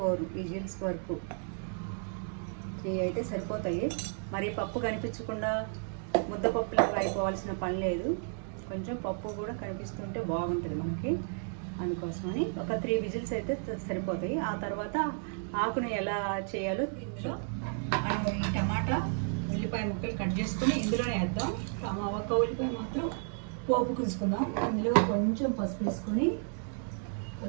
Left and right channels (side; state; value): left; silent; 56 dB below the other